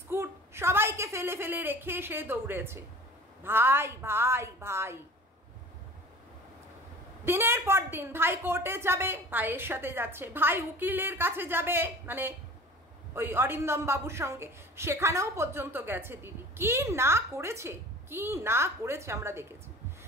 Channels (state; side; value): normal; both; correlation 0.42